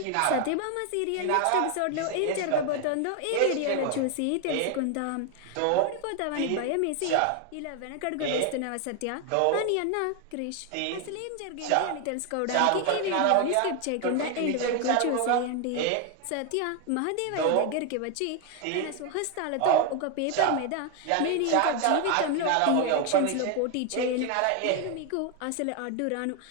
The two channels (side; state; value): both; different; correlation 0.01